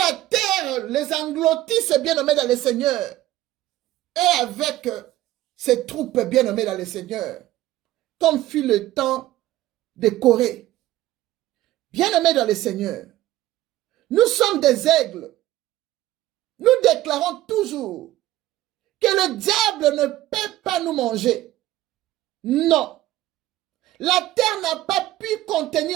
terre les engloutisse, bien-aimés dans le Seigneur. Et avec ses troupes bien-aimées dans le Seigneur. Comme fut le temps de Corée. Bien-aimés dans le Seigneur. Nous sommes des aigles. Nous déclarons toujours que le diable ne peut pas nous manger. Non. La terre n'a pas pu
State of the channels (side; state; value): left; quieter; 15.2 dB